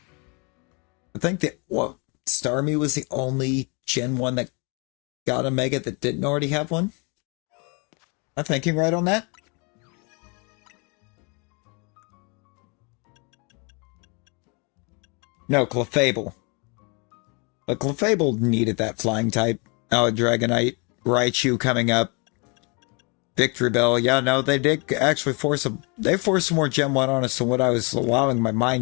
I think that, Starmie was the only Gen 1 that got a Mega that didn't already have one? Am I thinking right on that? No, Clefable. But Clefable needed that flying type. Oh, Dragonite, Raichu coming up. Victory Bell. Yeah, no, they did actually force some more Gen 1 on us than what I was allowing my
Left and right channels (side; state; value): right; quieter; 32.3 dB